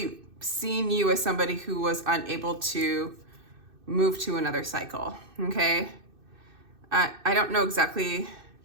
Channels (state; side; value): late; left; 2.6 ms